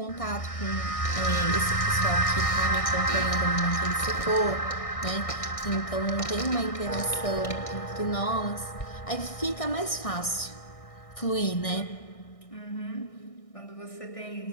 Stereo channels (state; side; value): late; right; 1.6 ms